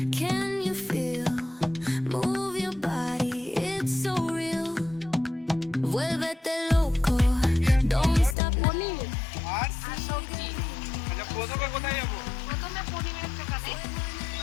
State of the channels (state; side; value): drops out; right; at 8.3 s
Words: Can you feel? Move your body, it's so real. Vuélvete loco, don't stop. আর সবজি আচ্ছা, প্রথমে কোথায় যাবো? প্রথমে পনিরের দোকানে।